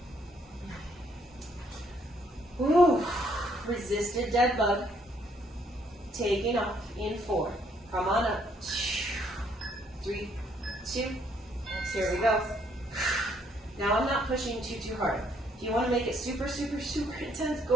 Ooh, resisted dead bug. Taking off in 4. Come on up. 3, 2. Here we go. Now I'm not pushing too hard. If you want to make it super, super, super intense,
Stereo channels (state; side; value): normal; both; correlation 0.68